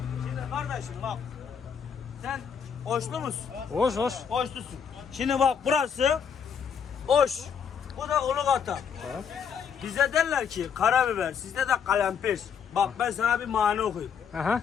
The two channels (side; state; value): right; quieter; 7.1 dB